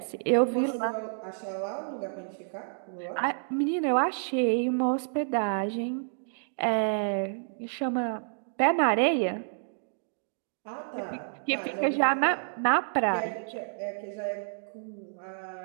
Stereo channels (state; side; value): silent; left; digital silence